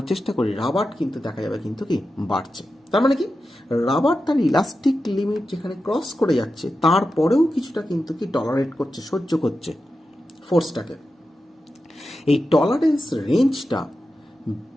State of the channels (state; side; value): normal; both; correlation 0.91